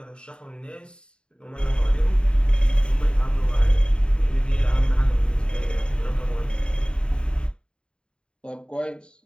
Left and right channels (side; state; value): right; late; 0.052 ms